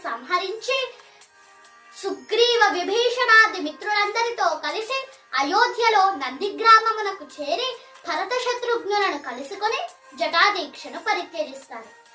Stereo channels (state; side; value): identical; both; correlation 1.00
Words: సంహరించి సుగ్రీవ విభీషణాది మిత్రులందరితో కలిసి అయోధ్యలో నందిగ్రామమునకు చేరి భరత శత్రుఘ్నులను కలుసుకొని జటాదీక్షను పరిత్యజిస్తారు.